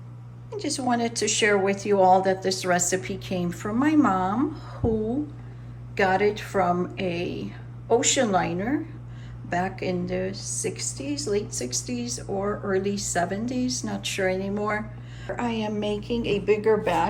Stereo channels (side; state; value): both; identical; correlation 1.00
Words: just wanted to share with you all that this recipe came from my mom, who got it from a ocean liner back in the 60s, late 60s or early 70s, not sure anymore. I am making a bigger